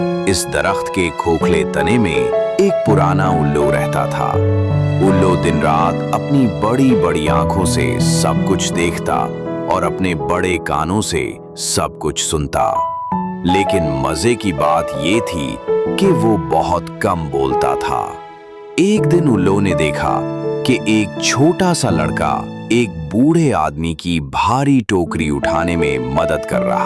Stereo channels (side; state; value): both; identical; correlation 1.00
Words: इस दरख्त के खोखले तने में एक पुराना उल्लू रहता था। उल्लू दिन रात अपनी बड़ी बड़ी आंखों से सब कुछ देखता और अपने बड़े कानों से सब कुछ सुनता। लेकिन मजे की बात ये थी कि वो बहुत कम बोलता था। एक दिन उल्लू ने देखा कि एक छोटा सा लड़का एक बूढ़े आदमी की भारी टोकरी उठाने में मदद कर